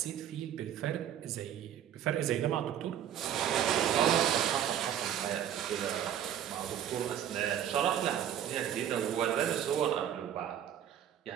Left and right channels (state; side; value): quieter; left; 10.2 dB